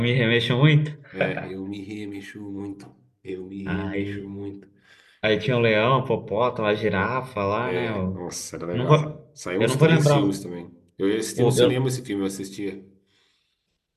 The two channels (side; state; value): both; identical; correlation 1.00